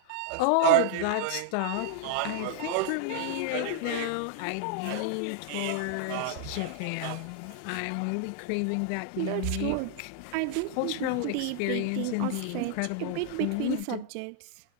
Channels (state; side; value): different; both; correlation 0.00